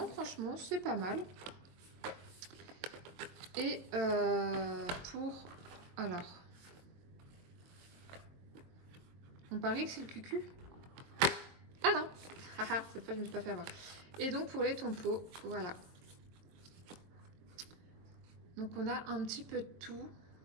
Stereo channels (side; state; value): left; late; 22 ms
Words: franchement, c'est pas mal. Et pour... Alors... On parie que c'est le cucu. Ah non. Cette fois, je ne me suis pas fait avoir. Et donc, pour les tompos, voilà. Donc, on a un petit peu de tout.